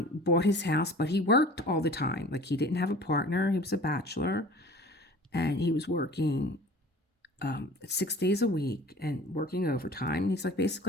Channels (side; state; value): both; normal; correlation 0.44